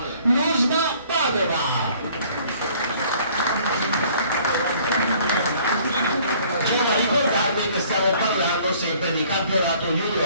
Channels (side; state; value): both; inverted; correlation -0.57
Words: l'USBA Padova. Devo ricordarvi che stiamo parlando sempre di campionato